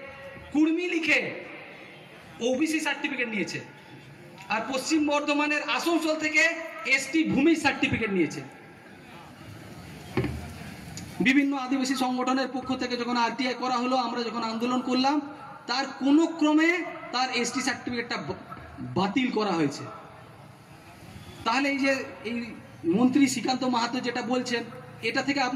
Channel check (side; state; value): both; identical; correlation 1.00